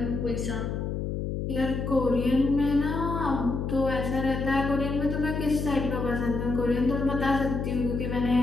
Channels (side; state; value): left; noise; hum, 3 dB below the sound